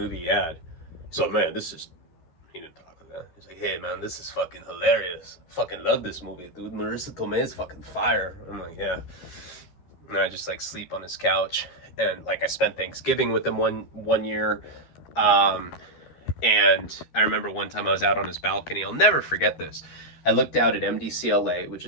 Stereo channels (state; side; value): late; right; 12 ms